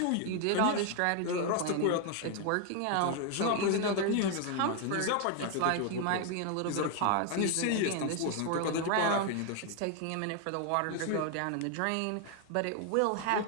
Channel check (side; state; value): both; different; correlation 0.01